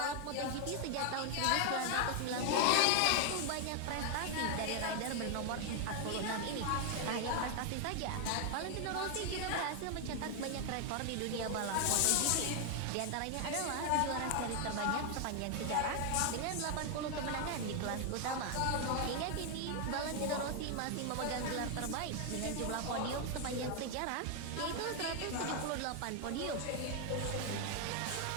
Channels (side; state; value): both; different; correlation 0.00